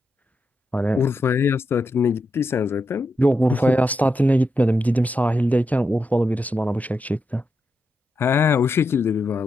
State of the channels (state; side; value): normal; both; correlation 0.86